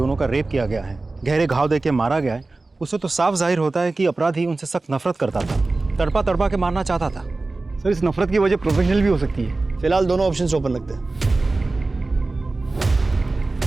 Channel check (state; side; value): quieter; left; 3.3 dB